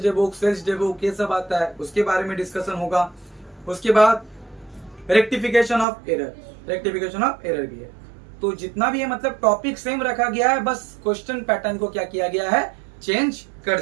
day book, sales day book, ये सब आता है, उसके बारे में डिस्कशन होगा। उसके बाद rectification of error, rectification of error भी है। तो जितना भी है मतलब टॉपिक सेम रखा गया है, बस क्वेश्चन पैटर्न को क्या किया गया है, चेंज कर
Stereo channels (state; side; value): drops out; left; at 5.9 s